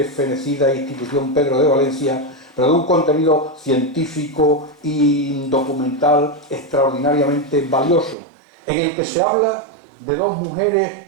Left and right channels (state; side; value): drops out; left; at 8.2 s